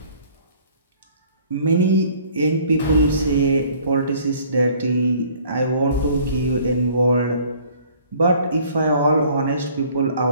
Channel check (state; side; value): inverted; both; correlation -0.55